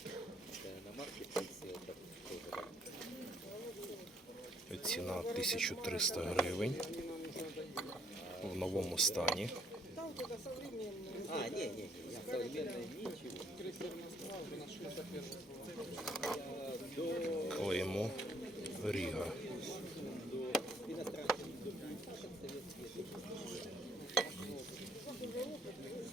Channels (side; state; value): both; normal; correlation 0.66